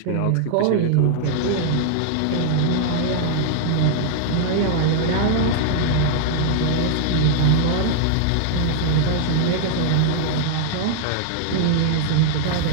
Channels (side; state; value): both; different; correlation -0.01